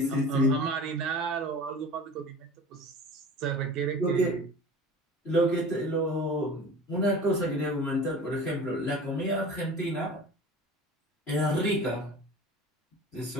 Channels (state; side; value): normal; both; correlation 0.39